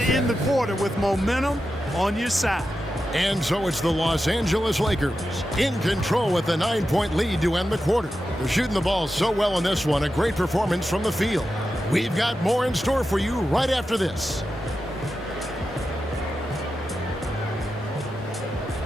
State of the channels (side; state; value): both; normal; correlation 0.90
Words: the quarter with momentum on your side. And so it's the Los Angeles Lakers in control with a 9-point lead to end the quarter. They're shooting the ball so well in this one. A great performance from the field. We've got more in store for you right after this.